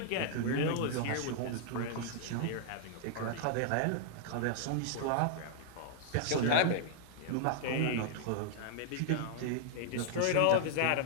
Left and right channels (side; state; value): both; different; correlation -0.01